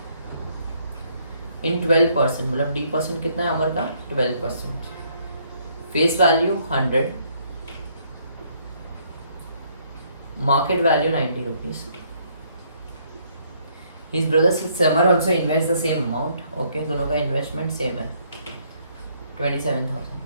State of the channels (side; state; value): both; inverted; correlation -0.68